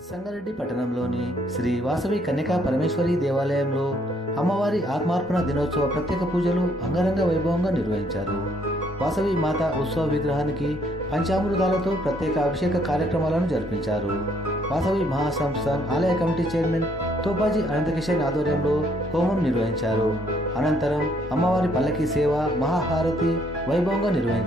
సంగారెడ్డి పట్టణంలోని శ్రీ వాసవి కన్యకా పరమేశ్వరి దేవాలయంలో అమ్మవారి ఆత్మార్పణ దినోత్సవ ప్రత్యేక పూజలు అంగరంగ వైభవంగా నిర్వహించారు. వాసవి మాత ఉత్సవ విగ్రహానికి పంచామృతాలతో ప్రత్యేక అభిషేక కార్యక్రమాలను జరిపించారు. వాసవి మహాసంస్థాన్ ఆలయ కమిటీ చైర్మన్ తోపాజీ అనంతకిషన్ ఆధ్వర్యంలో హోమం నిర్వహించారు. అనంతరం అమ్మవారి పల్లకి సేవ మహాహారతి వైభవంగా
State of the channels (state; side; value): normal; both; correlation 0.67